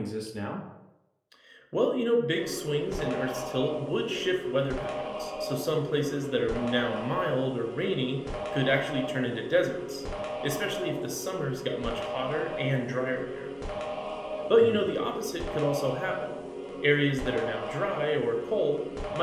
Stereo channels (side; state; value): both; identical; correlation 1.00